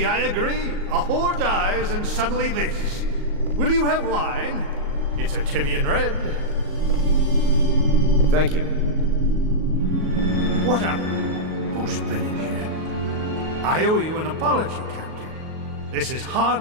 I agree. A whore dies and suddenly this. Will you have wine? It's a Tivian red. Thank you. What on... Who's been in here? I owe you an apology, Captain. This is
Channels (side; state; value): left; late; 38 ms